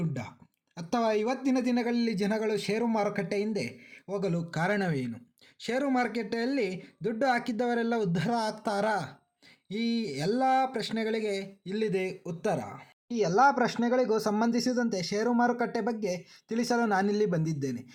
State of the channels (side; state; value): both; identical; correlation 1.00